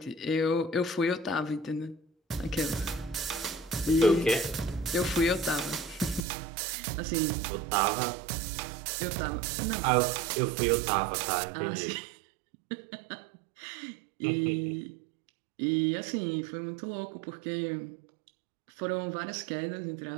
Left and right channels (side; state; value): left; drops out; at 6.2 s